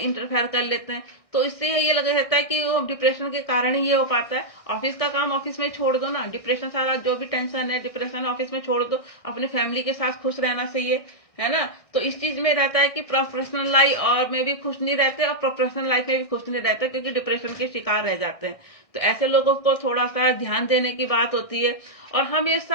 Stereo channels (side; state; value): right; late; 1.6 ms